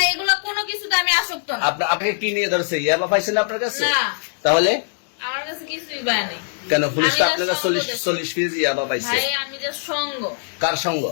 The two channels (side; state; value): right; silent; digital silence